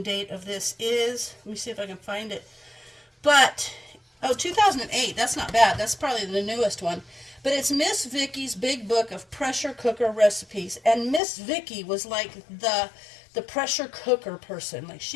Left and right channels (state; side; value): drops out; right; at 11.2 s